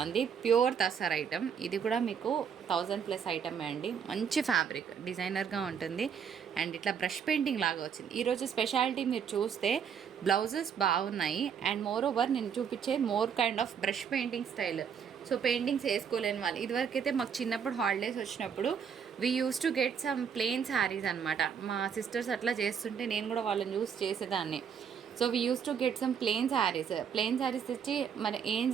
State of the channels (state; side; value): quieter; left; 7.3 dB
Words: Pure tussar item. ఇది కూడా మీకు 1000+ ఐటమే అండి. మంచి ఫ్యాబ్రిక్, డిజైనర్గా ఉంటుంది. అండ్ ఇట్లా బ్రష్ పెయింటింగ్ లాగా వచ్చింది. ఈరోజు స్పెషాలిటీ మీరు చూస్తే బ్లౌజెస్ బాగున్నాయి. అండ్ మోర్ ఓవర్ నేను చూపించే more kind of brush painting style. So paintings వేసుకోలేని వాళ్ళు, ఇదివరకైతే మాకు చిన్నప్పుడు హాలిడేస్ వచ్చినప్పుడు we use to get some plain saris అనమాట. మా సిస్టర్స్ అట్లా చేస్తుంటే నేను కూడా వాళ్ళని యూస్ చేసేదాన్ని. So we use to get some plain saris తెచ్చి మరి ఏం